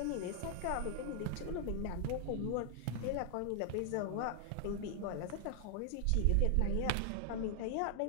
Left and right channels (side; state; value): both; different; correlation 0.00